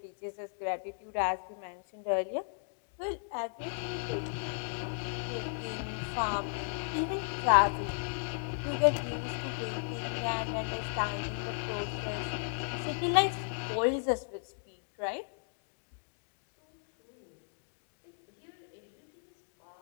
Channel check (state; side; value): silent; right; digital silence